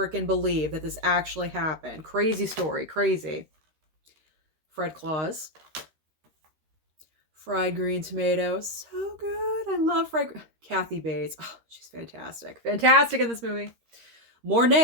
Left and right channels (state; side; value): late; left; 13 ms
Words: believe that this actually happened. Crazy story, crazy. Fred Claus. Fried green tomatoes. So good. I love Kathy Bates. Oh, she's fantastic. Fantastic in this movie. More